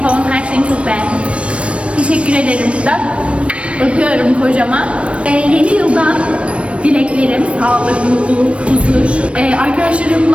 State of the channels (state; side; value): late; left; 0.061 ms